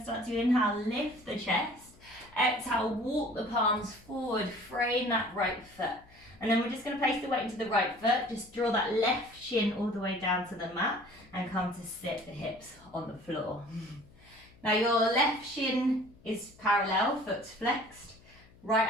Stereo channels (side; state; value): left; noise; hum, 26 dB below the sound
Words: start to inhale, lift the chest. Exhale, walk the palms forward, frame that right foot. And then we're just going to place the weight into the right foot. Just draw that left shin all the way down to the mat and come to sit the hips on the floor. Now your left shin is parallel, foot's flexed. Right